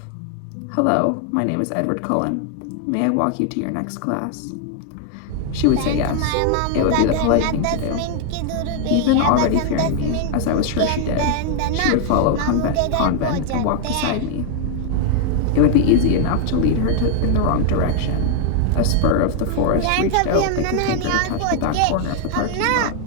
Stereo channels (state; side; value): different; both; correlation 0.00